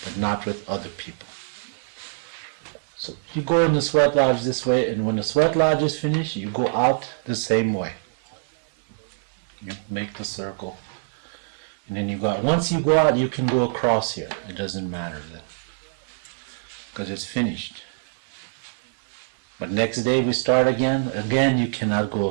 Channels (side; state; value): left; silent; 62 dB below the other